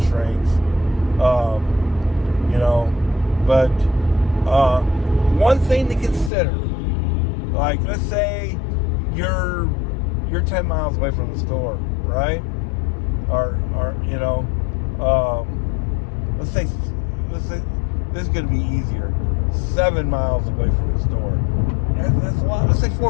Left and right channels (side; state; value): right; drops out; at 6.3 s